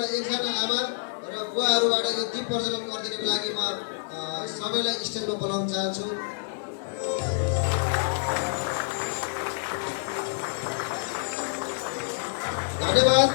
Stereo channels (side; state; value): right; silent; digital silence